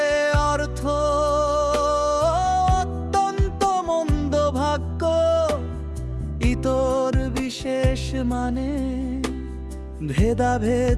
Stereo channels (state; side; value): identical; both; correlation 1.00